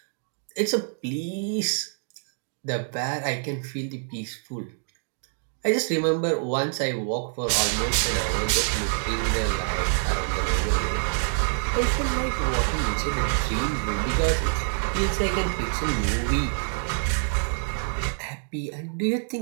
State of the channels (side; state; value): left; silent; 61 dB below the other